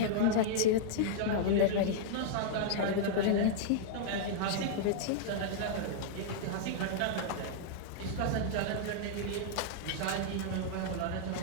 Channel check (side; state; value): both; different; correlation -0.02